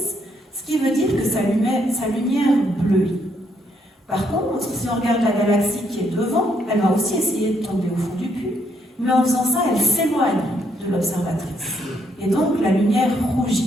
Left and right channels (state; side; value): normal; both; correlation 0.73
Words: ce qui veut dire que sa lumière bleuit. Par contre, si on regarde la galaxie qui est devant, elle va aussi essayer de tomber au fond du puits, mais en faisant ça, elle s'éloigne de l'observatrice. Et donc, la lumière